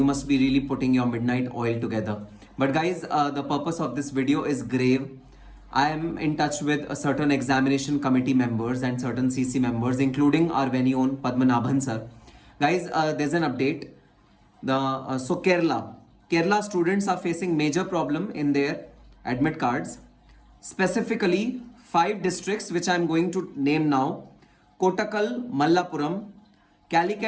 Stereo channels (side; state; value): both; identical; correlation 1.00